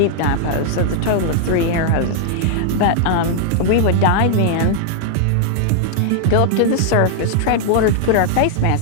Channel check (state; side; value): different; both; correlation -0.01